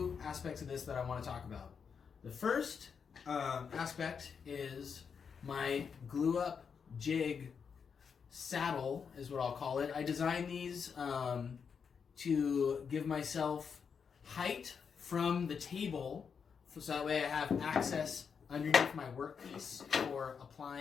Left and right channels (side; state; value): right; quieter; 6.4 dB